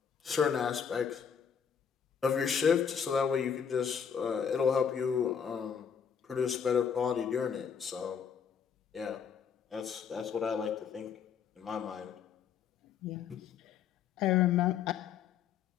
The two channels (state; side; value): quieter; right; 7.4 dB